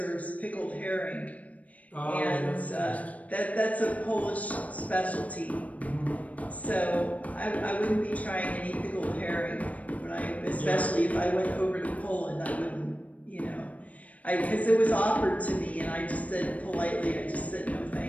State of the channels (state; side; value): late; right; 0.069 ms